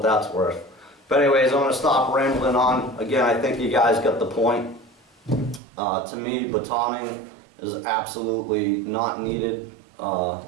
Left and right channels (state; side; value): drops out; left; at 5.6 s